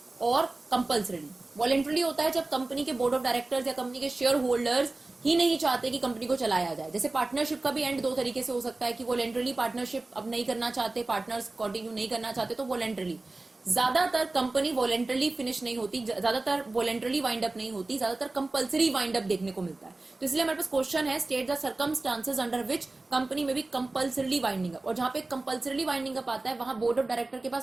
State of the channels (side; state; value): left; quieter; 3.1 dB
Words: और कंपल्सरीली। वॉलेंटरली होता है जब कंपनी के बोर्ड ऑफ डायरेक्टर्स या कंपनी के शेयर होल्डर्स ही नहीं चाहते कि कंपनी को चलाया जाए। जैसे पार्टनरशिप का भी एंड दो तरीके से हो सकता है कि वॉलेंटरली पार्टनरशिप अब नहीं करना चाहते, पार्टनर्स कंटिन्यू नहीं करना चाहते, तो वॉलेंटरली। ज्यादातर कंपनी वॉलेंटरली फिनिश नहीं होती, ज्यादातर वॉलेंटरली वाइंड अप नहीं होती, ज्यादातर कंपल्सरी वाइंड अप देखने को मिलता है। तो इसलिए हमारे पास क्वेश्चन है, state the circumstances under which company में भी कंपल्सरीली वाइंडिंग अप। और जहां पे कंपल्सरीली वाइंडिंग अप आता है वहां बोर्ड ऑफ डायरेक्टर के